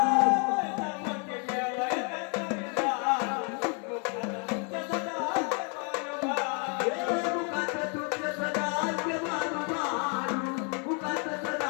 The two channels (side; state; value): right; quieter; 38.0 dB